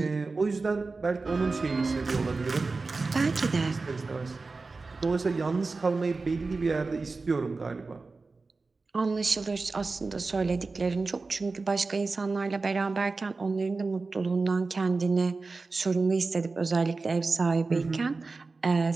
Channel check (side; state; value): left; quieter; 3.9 dB